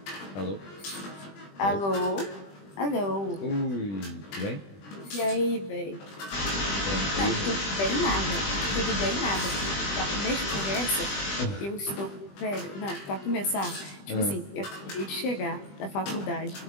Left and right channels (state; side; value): late; right; 20 ms